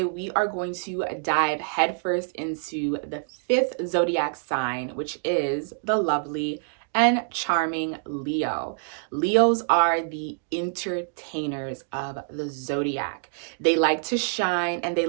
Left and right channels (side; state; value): left; silent; 61 dB below the other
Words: we are going to dive headfirst into the fifth zodiac sign, which is the lovely and charming Leo. Leos are the entertainers of the zodiac. They like to shine and they